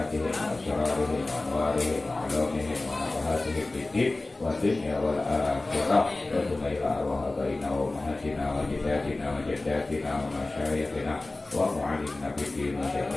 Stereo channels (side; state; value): right; quieter; 3.0 dB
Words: wa asrarihim wa anwarihim wa ulumihim wa nafahatihim fid din wa dunya wal akhirah wa tumaila arwah abaina wa ummahatina wa jaddatina wa jaddatina wa masyayikhina wa mu'allimna bid din wa